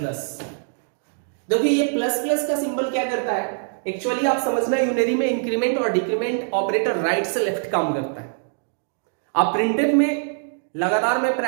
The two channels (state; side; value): silent; left; digital silence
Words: देखिए ये प्लस प्लस का सिंबल क्या करता है, एक्चुअली आप समझना, यूनरी में इंक्रीमेंट और डिक्रीमेंट ऑपरेटर राइट से लेफ्ट काम करता है। आप प्रिंटेड में लगातार मैं